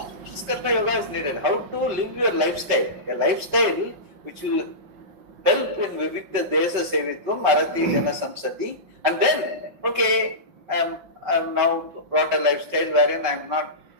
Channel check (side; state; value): left; late; 5.3 ms